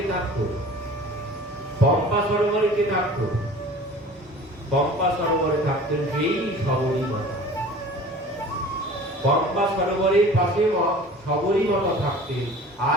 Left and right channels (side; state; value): both; normal; correlation 0.44